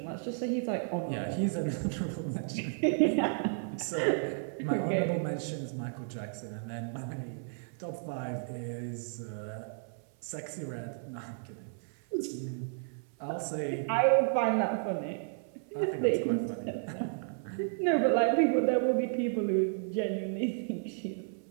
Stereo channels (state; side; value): silent; left; 56 dB below the other